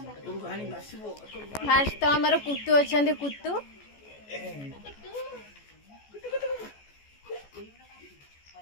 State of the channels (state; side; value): late; right; 14 ms